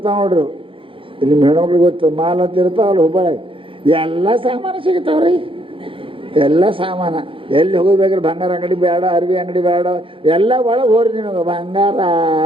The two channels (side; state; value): left; late; 0.25 ms